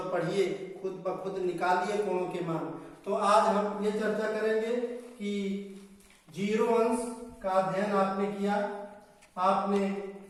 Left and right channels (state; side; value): identical; both; correlation 1.00